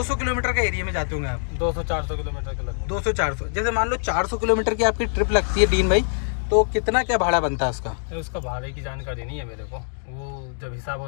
किलोमीटर का एरिया में जाते होंगे आप? 200-400 किलोमीटर के लगभग। 200-400, जैसे मान लो 400 किलोमीटर की आपकी ट्रिप लगती है डीन भाई, तो कितना क्या भाड़ा बनता है उसका? उसका भाड़े की जानकारी नहीं है मेरे को, वो जब हिसाब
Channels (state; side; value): silent; right; digital silence